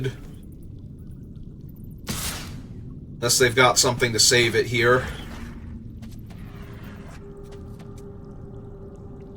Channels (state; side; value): identical; both; correlation 1.00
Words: Unless they've got something to save it here.